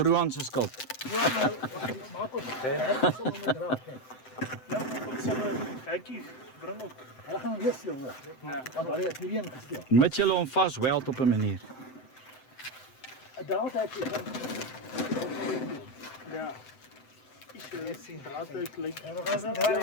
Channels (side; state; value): right; late; 7.8 ms